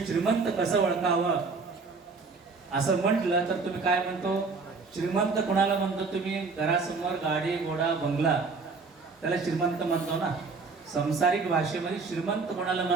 श्रीमंत कसं ओळखावं असं म्हटलं तर तुम्ही काय म्हणतो, श्रीमंत कोणाला म्हणतो तुम्ही? घरासमोर गाडी घोडा बंगला त्याला श्रीमंत म्हणतो ना. संसारिक भाषेमध्ये श्रीमंत कोणाला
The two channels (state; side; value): quieter; left; 4.4 dB